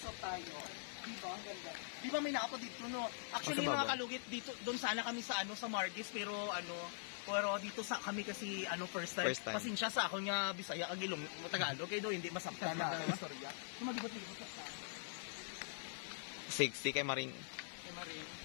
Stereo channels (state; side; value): silent; right; digital silence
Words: tayo. Di ba? Ang ganda. Di ba may nakapo dito, no? Actually Sa baba. mga kalugit dito, doon sana kami sa sa Margis pero dito sa kami kasi first time. First time. Pasensya sa ako nga Bisaya ag Ilong Tagalog kay do hindi masabtan na ang istorya. Lumagibot-libot sa 60 kay Maring. kay